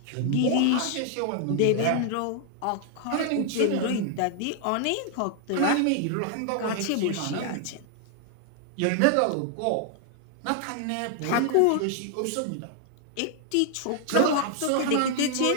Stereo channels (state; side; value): different; both; correlation 0.00